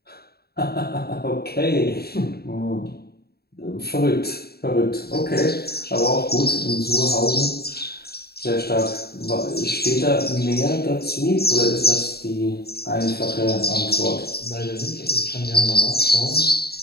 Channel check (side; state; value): right; late; 0.46 ms